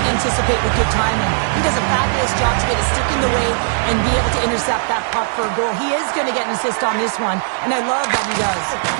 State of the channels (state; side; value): silent; left; digital silence